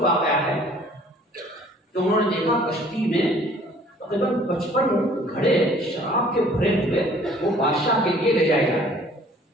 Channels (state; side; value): normal; both; correlation 0.54